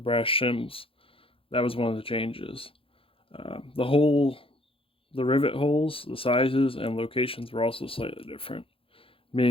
brass shims. That was one of the changes. The rivet holes, the sizes, and locations were also slightly different,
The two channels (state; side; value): late; right; 0.27 ms